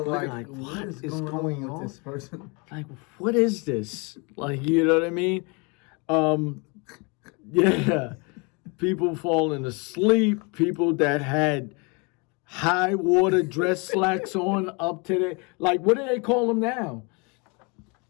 like what is going on with this person? Like, what is this? Like, you know what I mean? Yeah. People falling asleep, people that had high water dress slacks on up to the, like, what do they call them now?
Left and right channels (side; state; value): right; quieter; 30.8 dB